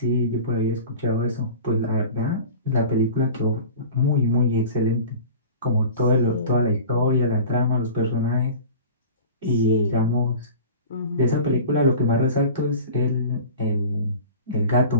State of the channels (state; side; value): inverted; both; correlation -0.38